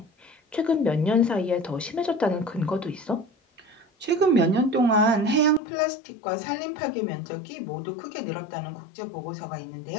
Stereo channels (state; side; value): drops out; right; at 5.6 s